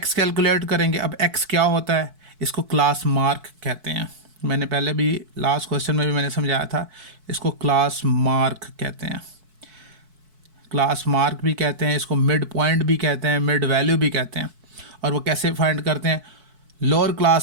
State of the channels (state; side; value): late; left; 4.6 ms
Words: कैलकुलेट करेंगे। अब एक्स क्या होता है, इसको क्लास मार्क कहते हैं। मैंने पहले भी लास्ट क्वेश्चन में भी मैंने समझाया था, इसको क्लास मार्क कहते हैं, क्लास मार्क भी कहते हैं, इसको मिड पॉइंट भी कहते हैं, मिड वैल्यू भी कहते हैं। और वो कैसे फाइंड करते हैं, lower